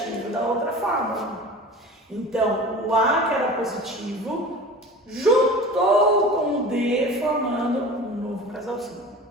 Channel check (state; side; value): normal; both; correlation 0.37